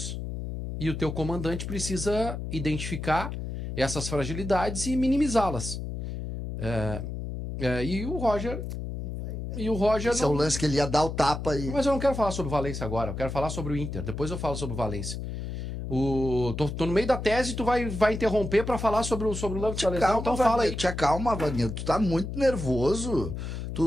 E o teu comandante precisa identificar essas fragilidades e minimizá-las. E o Roger... Esse é o lance que ele ia dar o tapa e... Mas eu não quero falar sobre o Valência agora, eu quero falar sobre o Inter. Depois eu falo sobre o Valência. Tô no meio da tese e tu vai interromper pra falar sobre o lance da lesão, então fala aí. Te acalma, Wagner, tu tá muito nervoso.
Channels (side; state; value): left; noise; hum, 5 dB below the sound